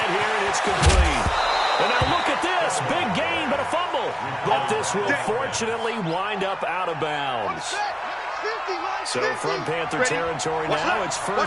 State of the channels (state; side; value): identical; both; correlation 1.00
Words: here, and it's complete. And now look at this. Big gain, but a fumble. But this will fortunately wind up out of bounds. So from Panther territory now, it's